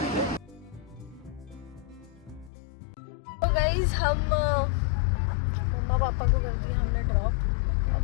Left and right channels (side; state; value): right; drops out; at 2.5 s